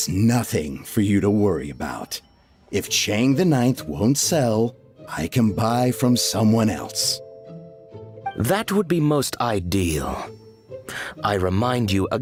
nothing for you to worry about. If Chang the Ninth won't sell, I can buy from someone else. That would be most ideal. I remind you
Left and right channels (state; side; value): identical; both; correlation 1.00